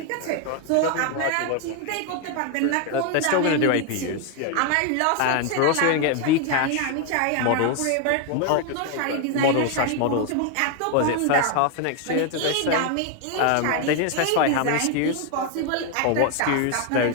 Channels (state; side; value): different; both; correlation 0.01